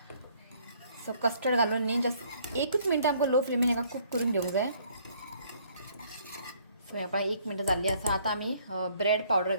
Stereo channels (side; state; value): both; inverted; correlation -0.63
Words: सो कस्टर्ड घालून न्ही जस्ट 1 मिनट आमकां लो फ्लेमीन हाका कूक करून घेवंक जाय. सो ह्या पळय 1 मिनट जाल्ली आसा. आतां आमी ब्रेड पावडर